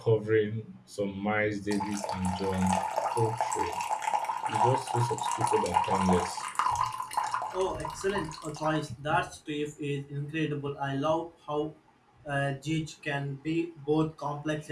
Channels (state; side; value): identical; both; correlation 1.00